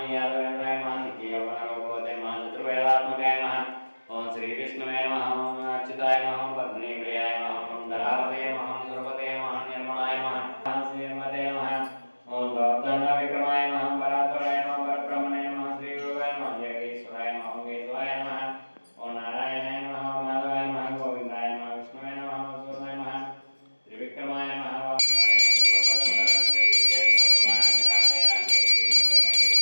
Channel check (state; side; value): inverted; both; correlation -1.00